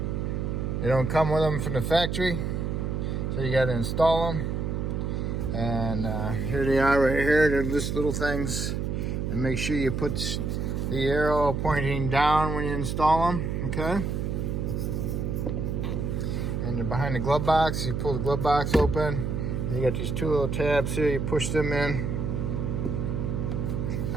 They don't come with them from the factory, so you got to install them. And here they are right here. They're just little things. And make sure you put the arrow pointing down when you install them, okay? And they're behind the glove box. You pull the glove box open. You got these two little tabs here. You push them in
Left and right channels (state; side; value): noise; right; hum, 1 dB below the sound